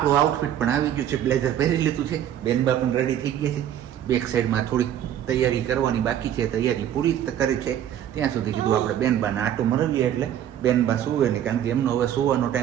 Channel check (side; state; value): left; quieter; 10.6 dB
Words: આઉટફિટ પણ આવી ગયું છે બ્લેઝર પહેરી લીધું છે બેનબા પણ રેડી થઈ ગયા છે બેક સાઈડમાં થોડીક તૈયારી કરવાની બાકી છે તૈયારી પૂરી કરી છે ત્યાં સુધી કીધું આપણે બેનબાને આટો મરવીએ એટલે બેનબા સુવે નહીં કારણ કે એમનો હવે સુવાનો